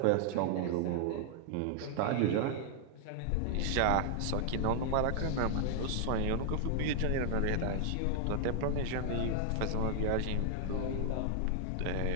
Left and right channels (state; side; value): different; both; correlation 0.00